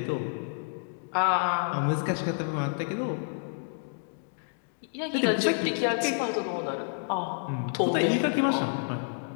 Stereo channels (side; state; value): right; silent; digital silence